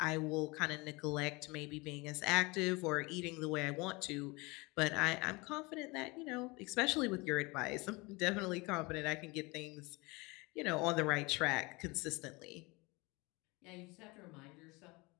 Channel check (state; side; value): quieter; right; 25.4 dB